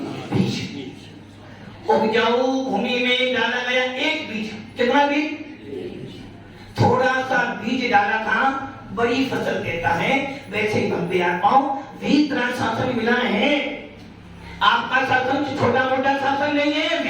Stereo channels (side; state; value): both; identical; correlation 1.00